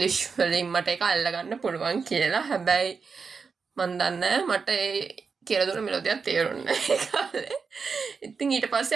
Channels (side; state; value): left; quieter; 5.2 dB